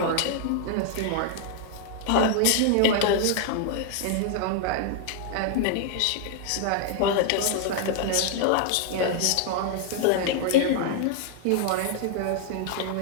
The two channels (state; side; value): different; both; correlation 0.00